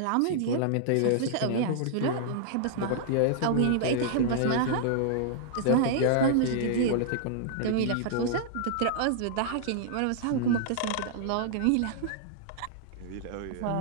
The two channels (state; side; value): different; both; correlation -0.01